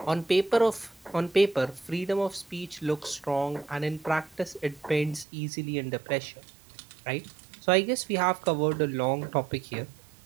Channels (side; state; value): left; drops out; at 5.2 s